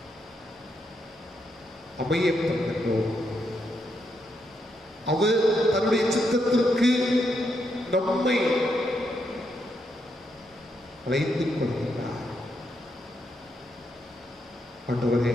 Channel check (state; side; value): normal; both; correlation 0.80